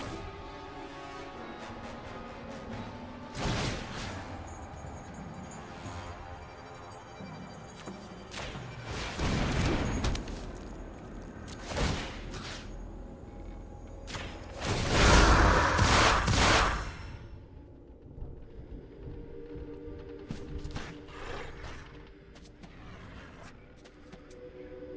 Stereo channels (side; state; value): both; identical; correlation 1.00